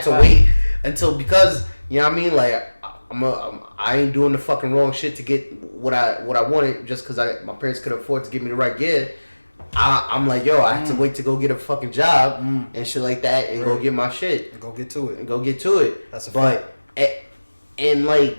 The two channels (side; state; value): both; inverted; correlation -1.00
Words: to wait until, because you know what I mean. Like, I ain't doing the fucking wrong shit to get what I wanted just because my parents could afford to give me the right gear. I'm like, yo, I have to wait to go get a fucking job and shit like that and go get my shit and go get to it. That's a fact. And like.